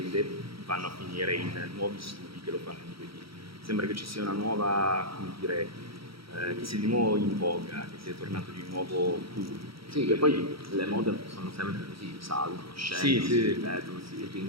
vanno a finire in nuovi studi che lo fanno in 2D. Sembra che ci sia una nuova, come dire, che sia di nuovo in voga, che sia tornato di nuovo cool. Sì, che poi le mode sono sempre così, salgono, scendono, si ripetono, si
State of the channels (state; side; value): late; left; 0.75 ms